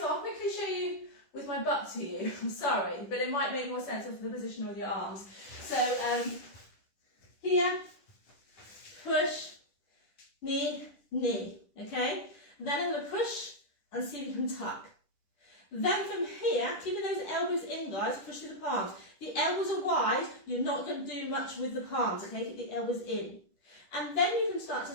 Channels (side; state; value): right; late; 10 ms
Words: I'll quickly show you with my butt to you. I'm sorry, but it might make more sense of the position of your arms. So here, push, knee, knee, okay? Then I'm going to push and see if you can tuck. Then from here, keeping those elbows in, guys, push through the palms. The elbows are wide, you're not going to do much with the palms, okay? Keep the elbows in. And then you can start to